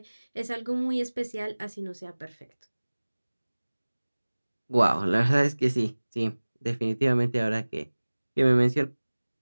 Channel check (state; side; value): inverted; both; correlation -1.00